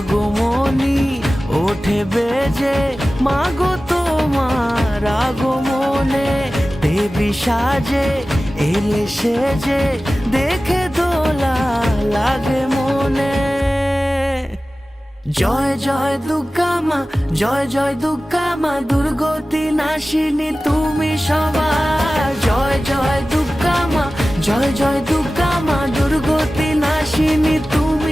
ওঠে বেজে, মাগো তোমার আগমনে দেবী সাজে এলে সেজে, দেখে দোলা লাগে মনে। জয় জয় দুর্গা মা, জয় জয় দুর্গা মা, দুর্গতি নাশিনী তুমি সবার। জয় জয় দুর্গা মা, জয় জয় দুর্গা মা, দুর্গতি নাশিনী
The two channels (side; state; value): both; normal; correlation 0.96